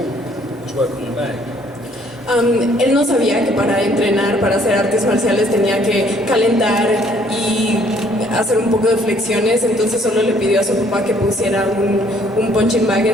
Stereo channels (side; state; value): both; normal; correlation 0.62